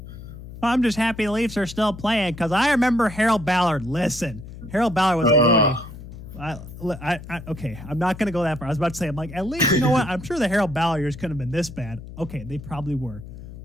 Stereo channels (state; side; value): noise; left; hum, 13 dB below the sound